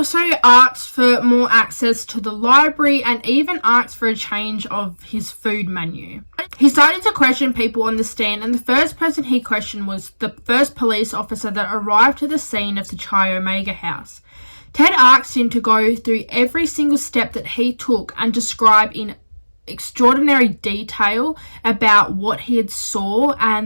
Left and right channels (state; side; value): inverted; both; correlation -1.00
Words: asked for more access to the library and even asked for a change of his food menu. He started to question people on the stand, and the first person he questioned was the first police officer that arrived to the scene of the Chi Omega house. Ted asked him to go through every single step that he took and describe in extraordinary detail about what he had saw